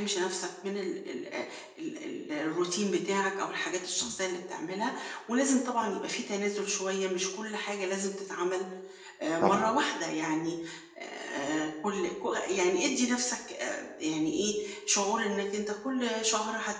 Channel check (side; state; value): both; identical; correlation 1.00